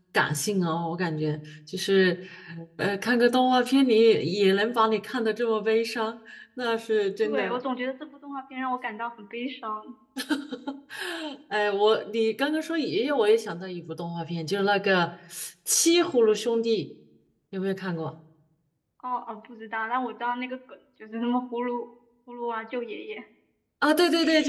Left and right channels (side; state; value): both; identical; correlation 1.00